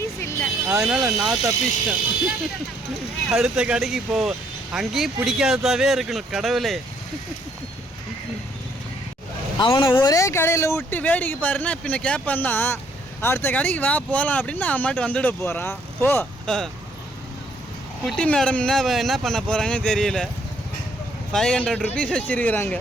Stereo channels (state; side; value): normal; both; correlation 0.67